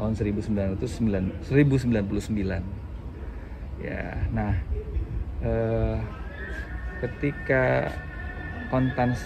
1099. Ya, nah ketika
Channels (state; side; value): identical; both; correlation 1.00